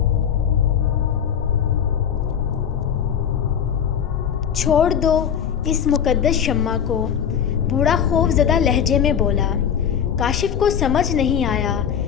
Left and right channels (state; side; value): quieter; right; 8.2 dB